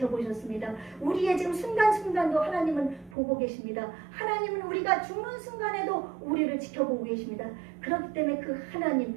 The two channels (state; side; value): drops out; left; at 3.2 s